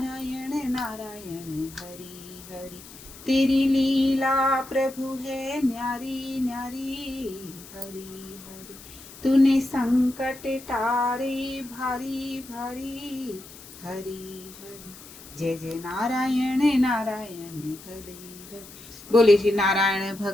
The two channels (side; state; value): left; noise; hiss, 18 dB below the sound